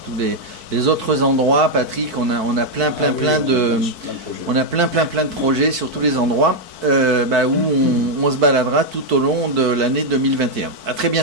les autres endroits. Patrick, on a plein de projets sur tous les endroits où on se baladera tout au long de l'année 2021. À très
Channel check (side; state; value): left; late; 4.5 ms